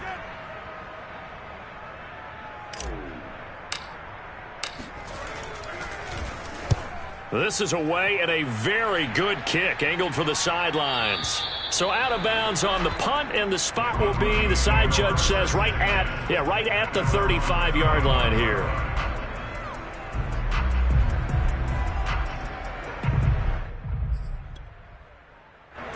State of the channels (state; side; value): identical; both; correlation 1.00